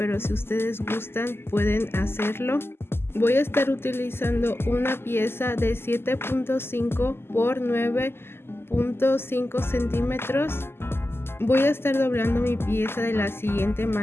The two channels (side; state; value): right; late; 0.12 ms